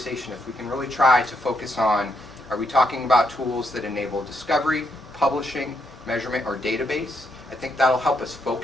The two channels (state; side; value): normal; both; correlation 0.77